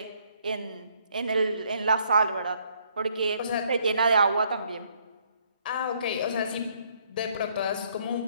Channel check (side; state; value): both; inverted; correlation -0.67